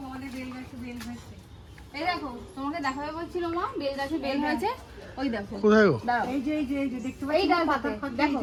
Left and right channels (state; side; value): identical; both; correlation 1.00